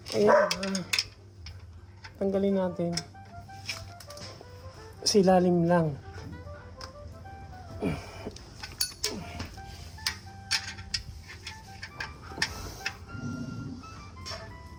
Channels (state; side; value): identical; both; correlation 1.00